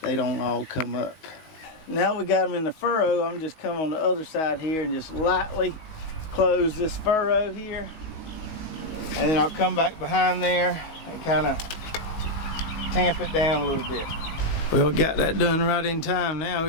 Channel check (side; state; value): right; late; 19 ms